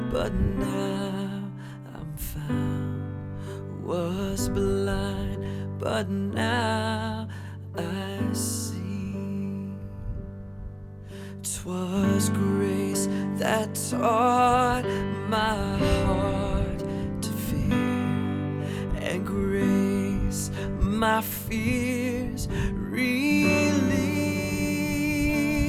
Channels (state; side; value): identical; both; correlation 1.00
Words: but now I'm found. Was blind, but now I see. 'Twas grace that taught my heart to fear, and grace my fears relieved.